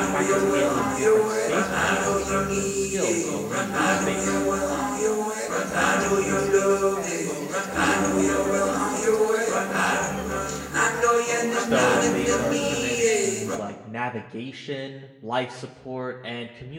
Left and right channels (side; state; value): both; identical; correlation 1.00